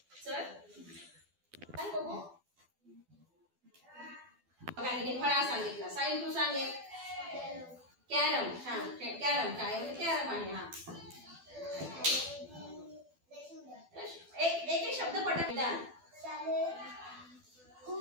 चल काय बघू. हे फळा सांगितला. साई तू सांग एक. कॅरम. छान. कॅरम. शाळेमध्ये कॅरम आहे. हा एक शब्द पटकन. मैदान.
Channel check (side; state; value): left; late; 12 ms